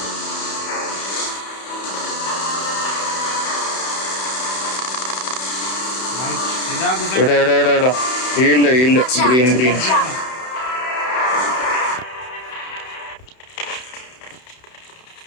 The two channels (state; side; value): late; right; 31 ms